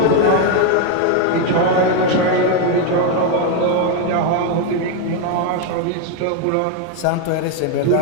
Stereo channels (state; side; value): different; both; correlation 0.01